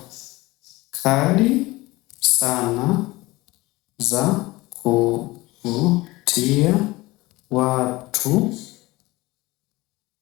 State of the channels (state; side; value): quieter; right; 20.6 dB